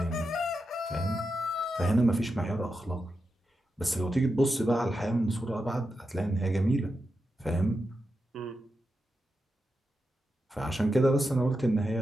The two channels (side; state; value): both; normal; correlation 0.88